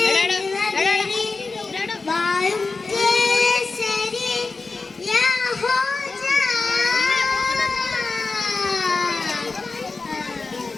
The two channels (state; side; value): quieter; right; 4.0 dB